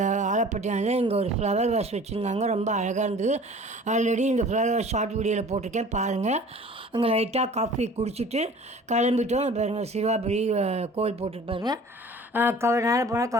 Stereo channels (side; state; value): both; normal; correlation 0.46